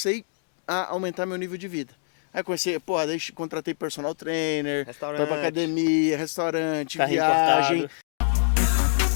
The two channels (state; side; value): silent; right; digital silence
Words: a aumentar meu nível de vida. Aí comecei, porra, daí contratei personal trainer, foi pra Restaurante. academia, restaurante, Carrinho viagem. importado.